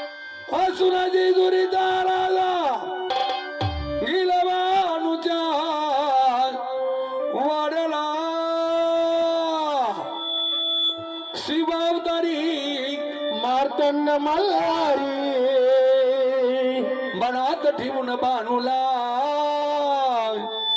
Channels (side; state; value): both; identical; correlation 1.00